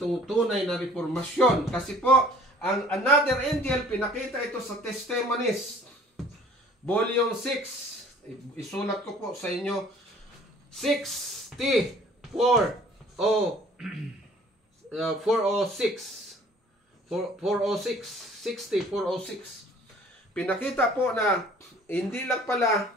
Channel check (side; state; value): both; normal; correlation 0.53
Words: tunay na reformasyon. Kasi po, ang another angel, pinakita ito sa Testimonies, Volume 6. Isulat ko po sa inyo, 406. Pinakita po na hindi lang pala